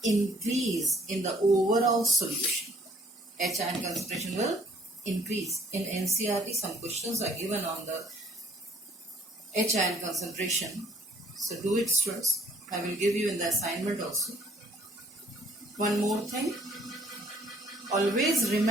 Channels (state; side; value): normal; both; correlation 0.59